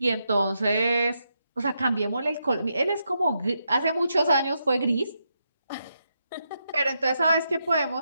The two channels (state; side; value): inverted; both; correlation -0.83